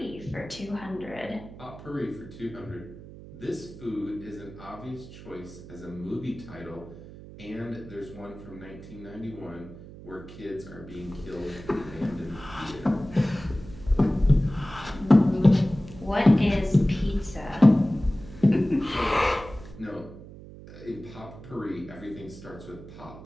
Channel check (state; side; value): noise; right; hum, 16 dB below the sound